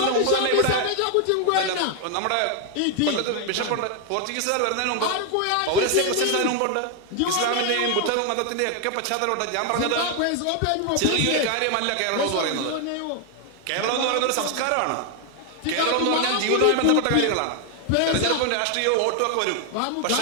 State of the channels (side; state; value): both; different; correlation 0.00